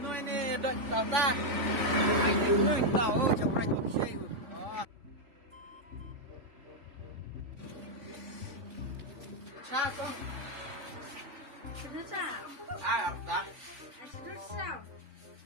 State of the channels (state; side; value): late; left; 3.6 ms